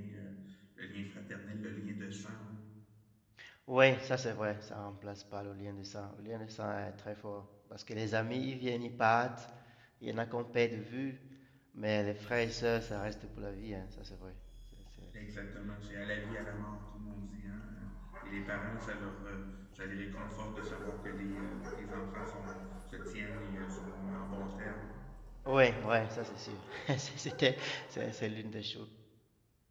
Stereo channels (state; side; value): identical; both; correlation 1.00